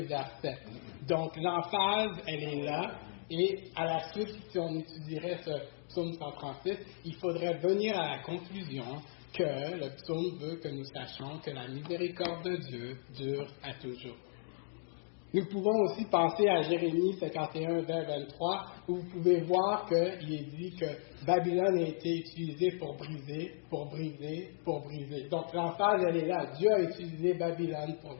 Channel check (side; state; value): right; silent; digital silence